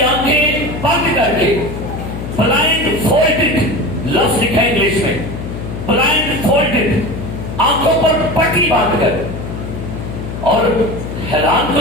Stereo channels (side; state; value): left; noise; hum, 7 dB below the sound